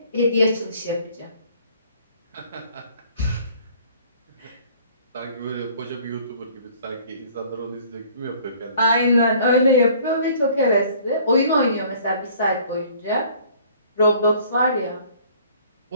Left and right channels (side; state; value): both; inverted; correlation -0.54